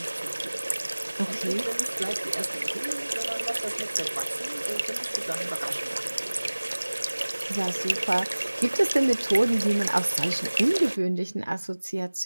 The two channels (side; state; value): both; inverted; correlation -1.00